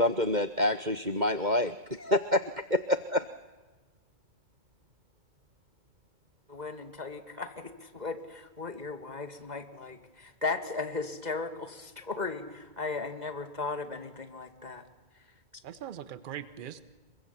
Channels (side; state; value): left; late; 2.1 ms